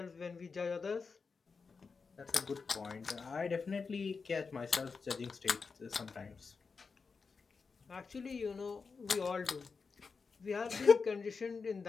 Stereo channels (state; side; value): quieter; right; 4.9 dB